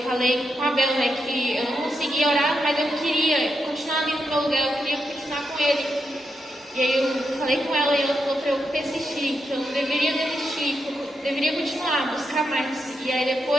falei com a Bel, né, que eu não conseguia orar, mas eu queria continuar ali no meu lugar, eu queria continuar com ele. E aí eu falei com ela e ela falou para eu persistir, que eu não deveria desistir, que eu deveria continuar, buscar mais. E aí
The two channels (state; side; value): normal; both; correlation 0.83